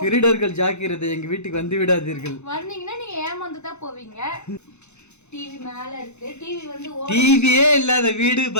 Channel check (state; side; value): late; right; 0.82 ms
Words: திருடர்கள் ஜாக்கிரதை, எங்க வீட்டுக்கு வந்து விடாதீர்கள். வந்தீங்கன்னா நீங்க ஏமாந்து தான் போவீங்க. டிவி மேல இருக்கு. டிவி வந்து டிவியே இல்லாத வீடு